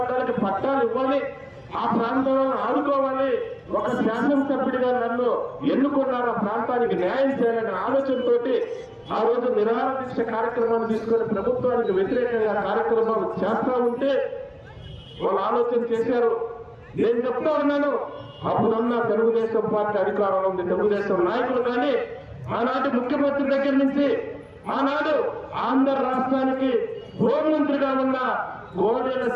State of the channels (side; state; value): both; identical; correlation 1.00